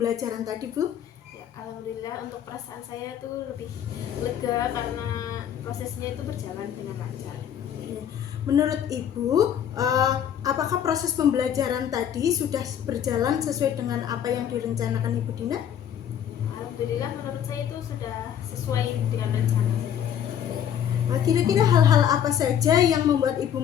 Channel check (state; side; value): quieter; right; 9.4 dB